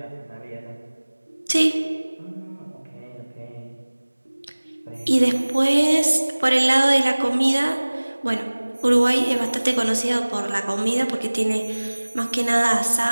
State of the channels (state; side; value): inverted; both; correlation -1.00